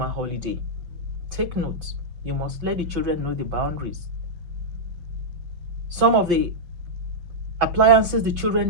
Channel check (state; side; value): late; left; 6.0 ms